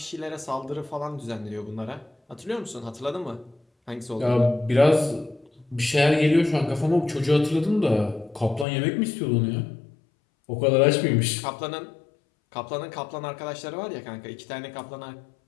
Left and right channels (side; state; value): right; drops out; at 8.7 s